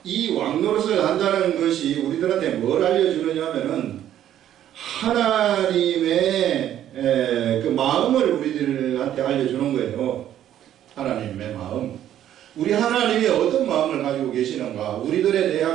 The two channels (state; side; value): quieter; left; 11.3 dB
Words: 이 왕노릇을 한다는 것이 우리들한테 뭘 알려주느냐면은 하나님의 그 마음을 우리들한테 알려주는 거예요. 하나님의 마음. 우리 하나님이 어떤 마음을 가지고 계시는가, 우리들에